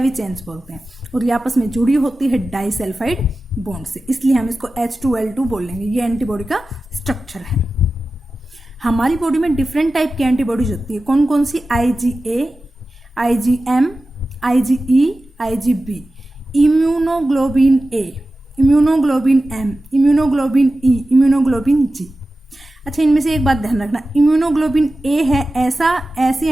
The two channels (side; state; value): both; normal; correlation 0.94